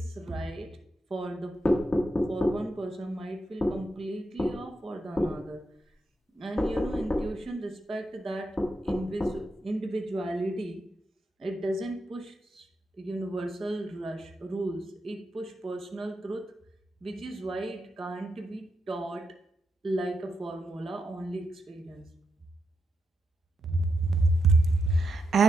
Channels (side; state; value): both; normal; correlation 0.85